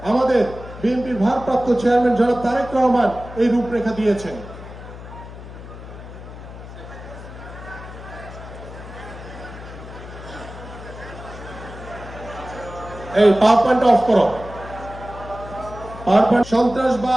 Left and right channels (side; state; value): left; noise; hum, 14 dB below the sound